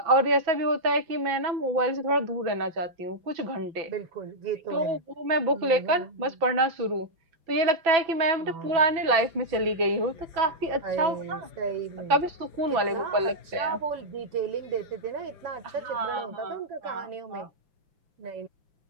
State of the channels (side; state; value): left; late; 6.1 ms